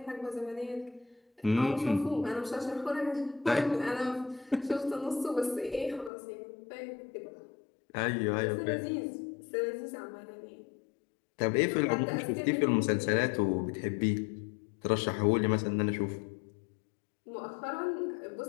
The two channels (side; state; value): right; drops out; at 6.1 s